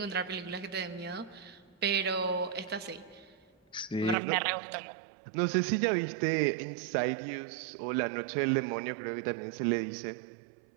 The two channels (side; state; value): left; drops out; at 4.2 s